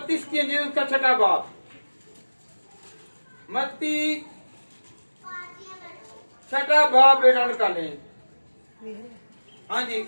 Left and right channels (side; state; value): both; inverted; correlation -1.00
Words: की अंजील उसका 6वां बाब, मत्ती 6वां बाब बेटा निकाले। हाँ जी,